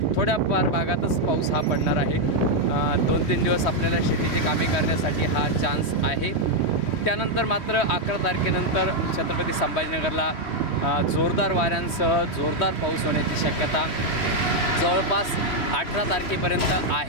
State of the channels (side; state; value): right; late; 3.1 ms